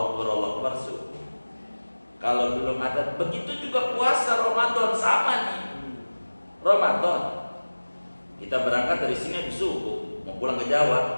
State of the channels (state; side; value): inverted; both; correlation -1.00